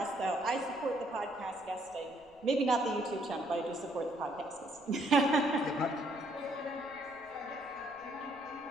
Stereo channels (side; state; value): left; noise; rumble, 29 dB below the sound